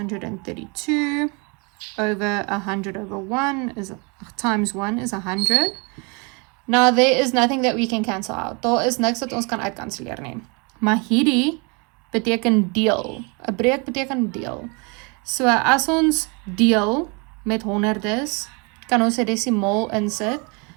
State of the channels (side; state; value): left; quieter; 31.6 dB